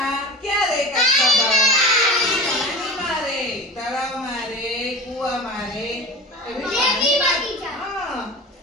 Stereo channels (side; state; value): both; normal; correlation 0.34